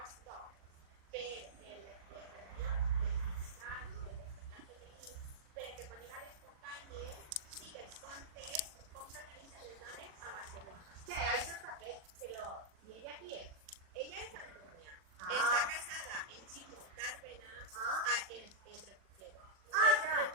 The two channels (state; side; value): late; left; 40 ms